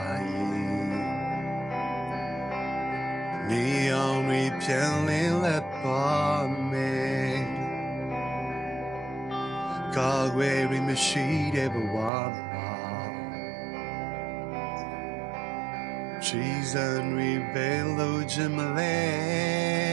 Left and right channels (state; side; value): drops out; left; at 12.1 s